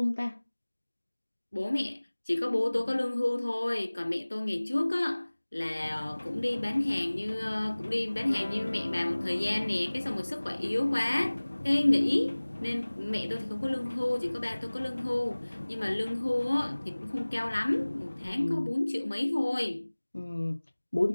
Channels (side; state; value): both; inverted; correlation -1.00